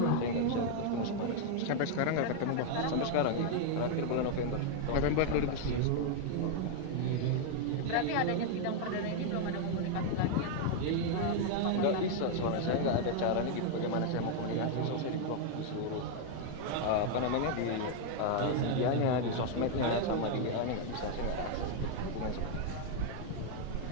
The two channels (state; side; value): different; both; correlation 0.00